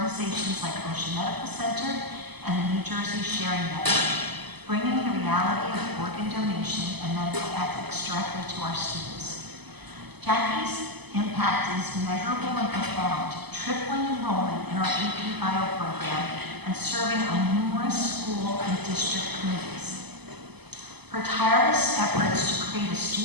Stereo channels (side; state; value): left; late; 0.99 ms